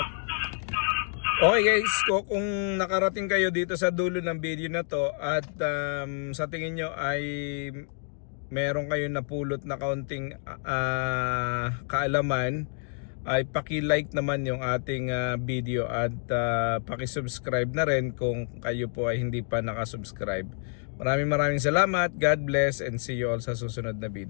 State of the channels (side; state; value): right; silent; 59 dB below the other